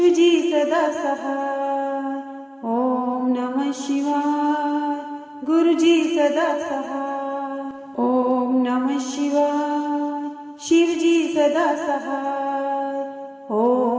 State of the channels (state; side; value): identical; both; correlation 1.00